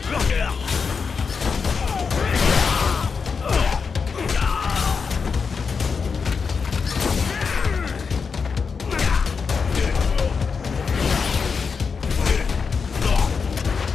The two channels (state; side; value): quieter; right; 5.5 dB